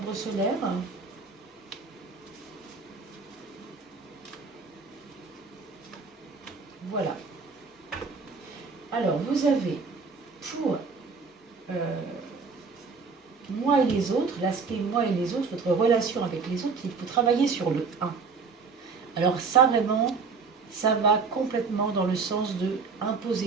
solaire. Voilà. Alors, vous avez pour moi et les autres, l'aspect moi et les autres, votre relation avec les autres, il faut travailler sur le 1. Alors ça, vraiment, ça va complètement dans le sens de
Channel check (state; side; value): quieter; left; 4.9 dB